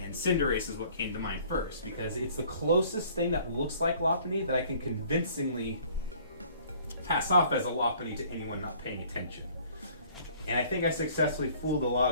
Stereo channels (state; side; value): inverted; both; correlation -0.54